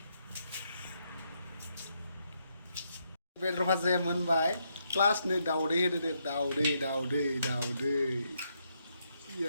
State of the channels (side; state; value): both; inverted; correlation -0.78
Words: बेदर भाजाया मोनबाय प्लास नै दाउदै होदो दे दाउदै